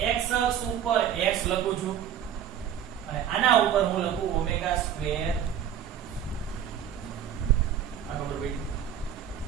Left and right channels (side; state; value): left; quieter; 9.5 dB